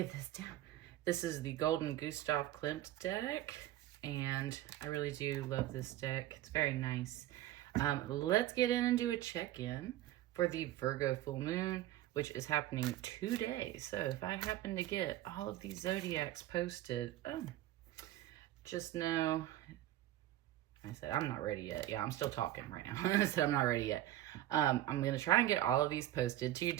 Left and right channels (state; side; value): quieter; left; 14.1 dB